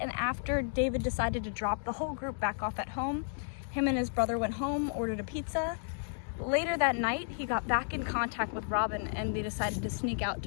after David decided to drop the whole group back off at home, him and his brother went home, ordered a pizza. Later that night, he got back in contact with Robin and they decided to sneak out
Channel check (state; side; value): silent; right; digital silence